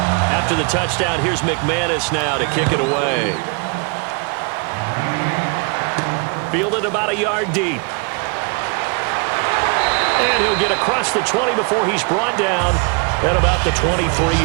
After the touchdown, here's McManus now to kick it away. Fielded about a yard deep. And he'll get across the 20 before he's brought down at about the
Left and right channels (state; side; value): quieter; left; 32.1 dB